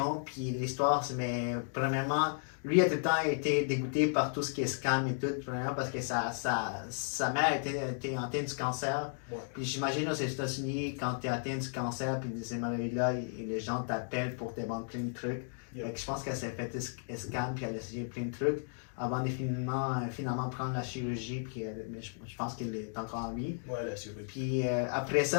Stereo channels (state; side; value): silent; right; digital silence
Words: puis l'histoire, mais premièrement, lui a tout le temps été dégoûté par tout ce qui est scam et tout, premièrement parce que sa mère était atteinte du cancer. Ouais. Puis j'imagine aux États-Unis, quand tu es atteint du cancer, puis de ces maladies-là, les gens t'appellent pour te vendre plein de trucs. Yeah. Fait que je pense qu'elle s'est fait scam, puis elle a essayé plein de trucs avant de finalement prendre la chirurgie, puis mais je pense qu'elle est encore en vie. Ouais, la chirurgie. Puis après